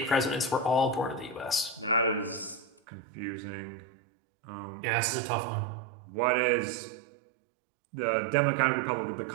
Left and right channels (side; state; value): left; drops out; at 2.7 s